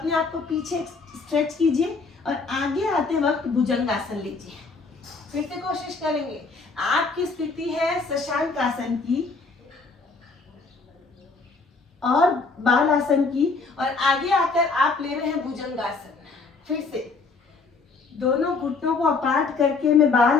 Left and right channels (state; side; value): quieter; right; 4.2 dB